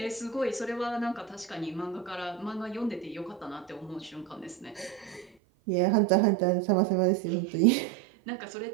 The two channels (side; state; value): left; drops out; at 5.3 s